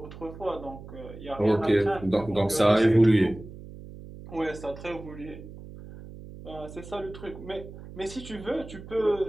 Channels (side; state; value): right; noise; hum, 15 dB below the sound